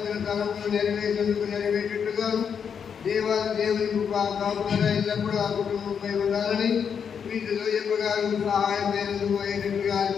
తలములు నెరవేరేటట్టుగా దేవుని కాపుదల ఎల్లప్పుడూ ఆ కుటుంబంపై ఉండాలని వీటిలో చెప్పగారు సహాయమైనందుకు అయ్యేటట్టుగా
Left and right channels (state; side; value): quieter; right; 7.1 dB